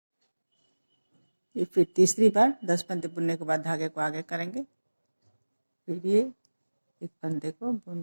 ये फिर तीसरी बार 10 फंदे बुनने के बाद धागे को आगे करेंगे। फिर ये एक फंदे को बुन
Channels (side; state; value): both; inverted; correlation -1.00